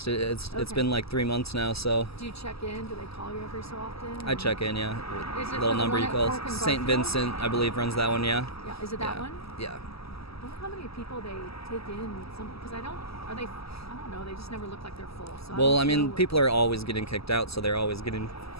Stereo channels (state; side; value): late; right; 0.77 ms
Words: It's been like 3 months now, so. Do you check in? Do they call you every so often? I check in, yeah. Is it little number you call. St. Vincent, I believe, runs that one, yeah. Yeah, is it that one? Yeah. wonder how many people they take in. Because I don't know. They just never look like they're full. So Well, I mean, people are always getting kicked out, so they're always getting